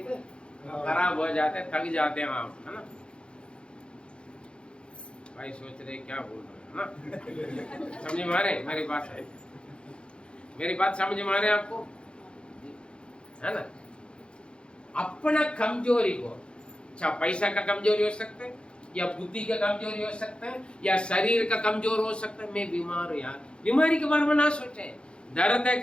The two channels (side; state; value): right; late; 0.056 ms